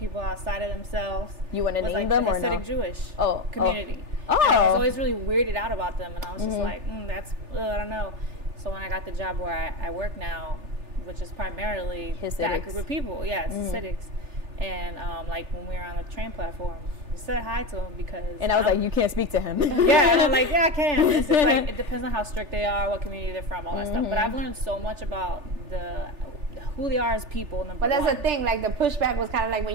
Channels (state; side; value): late; left; 3.4 ms